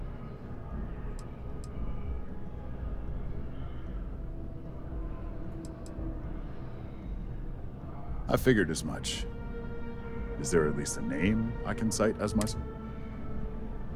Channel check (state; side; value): identical; both; correlation 1.00